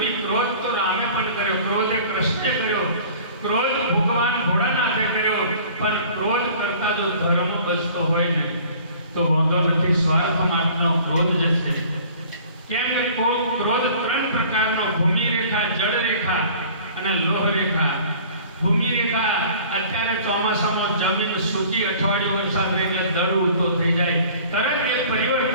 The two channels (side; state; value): both; inverted; correlation -0.48